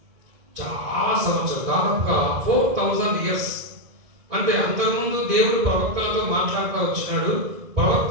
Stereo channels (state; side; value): late; left; 2.0 ms